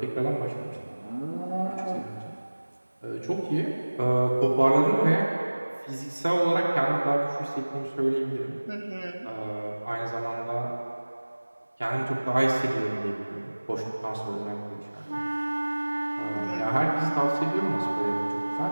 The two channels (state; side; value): inverted; both; correlation -1.00